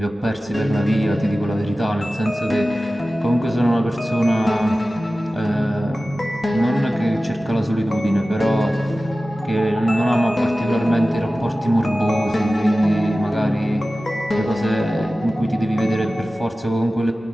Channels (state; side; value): normal; both; correlation 0.96